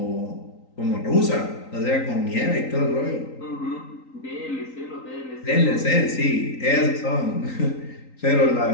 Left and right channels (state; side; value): late; right; 3.9 ms